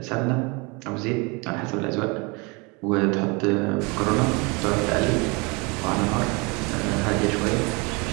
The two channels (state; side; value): quieter; left; 28.6 dB